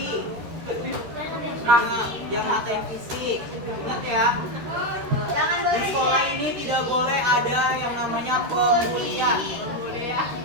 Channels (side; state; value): left; late; 13 ms